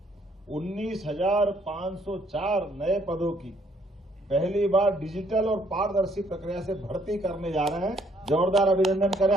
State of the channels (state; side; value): normal; both; correlation 0.66